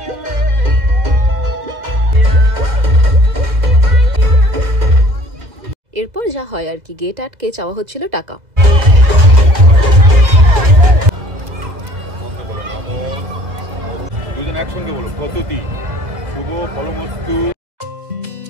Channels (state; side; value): late; left; 2.0 ms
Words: এরপর যা হয় আর কি, গেট আটকে চাওয়া হচ্ছিল টাকা। দুজন একসঙ্গে বলো, পদ্ধতি শুভ ফলমস্তু।